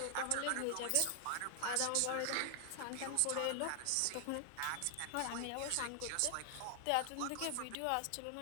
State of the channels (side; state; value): both; different; correlation 0.00